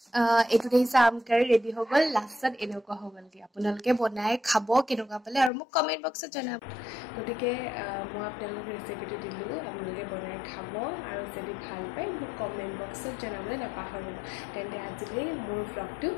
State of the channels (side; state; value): right; drops out; at 5.5 s